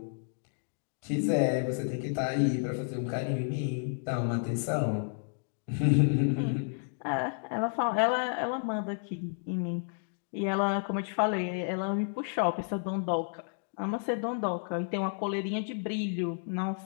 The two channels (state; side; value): silent; right; digital silence